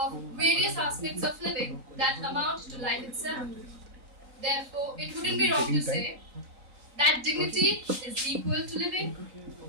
various aspects of living that amount to life itself. Therefore, it wouldn't be wrong to say that dignity is equal to living,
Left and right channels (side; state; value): left; late; 3.9 ms